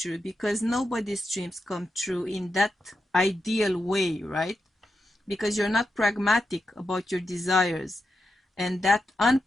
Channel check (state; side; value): normal; both; correlation 0.87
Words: because nobody's dreams come true in that ideal way, right? Because you're not pragmatic about your desires, and that